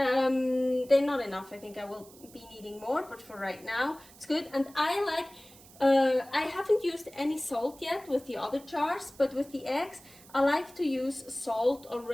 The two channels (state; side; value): noise; right; hiss, 22 dB below the sound